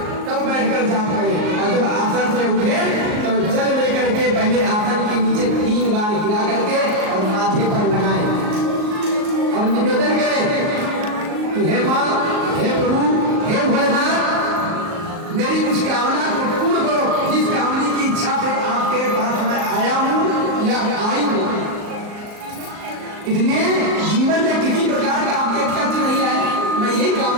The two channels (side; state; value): left; late; 38 ms